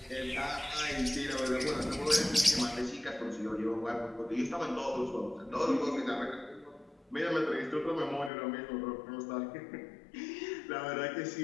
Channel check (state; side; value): drops out; right; at 8.3 s